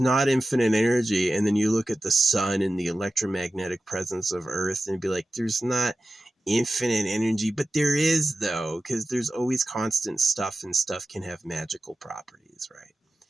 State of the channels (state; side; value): normal; both; correlation 0.94